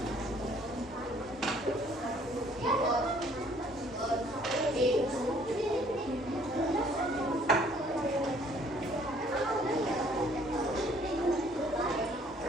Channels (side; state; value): both; normal; correlation 0.59